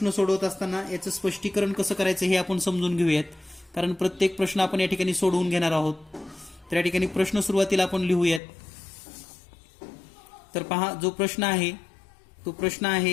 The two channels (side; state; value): right; drops out; at 8.4 s